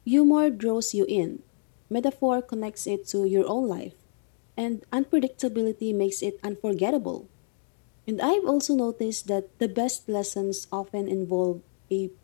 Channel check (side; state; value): right; silent; digital silence